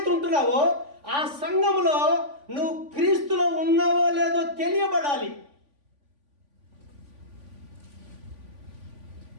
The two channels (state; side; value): late; left; 3.5 ms